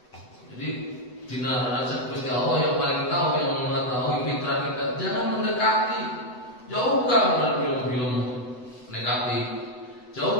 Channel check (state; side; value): late; right; 8.0 ms